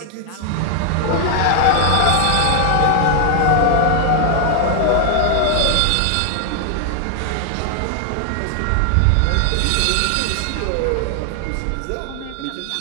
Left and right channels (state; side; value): different; both; correlation 0.00